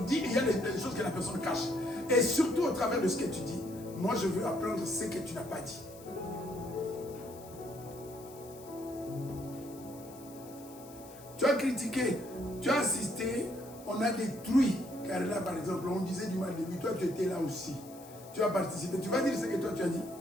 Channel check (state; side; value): noise; left; hiss, 20 dB below the sound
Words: dit et il y a des choses que la personne cache. Et surtout, au travers de ce que tu dis, moi, je veux apprendre ce que tu n'as pas dit. Tu as critiqué, tu as assisté, on a détruit. Car là, par exemple, on disait du mal de lui, toi, tu étais là aussi. Tu as participé. Tu vas dire ce que toi, tu as dit.